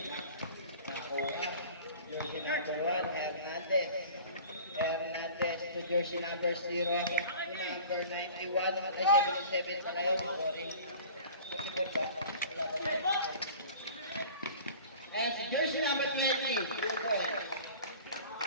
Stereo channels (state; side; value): inverted; both; correlation -0.42